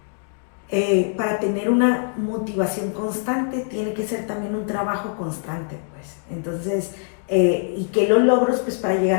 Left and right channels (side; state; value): right; silent; digital silence